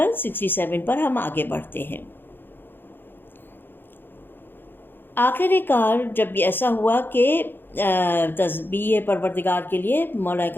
67 پر ہم آگے بڑھتے ہیں۔ آخر کار جب ایسا ہوا کہ تسبیح پروردگار کے لیے مولا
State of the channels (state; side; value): late; right; 0.099 ms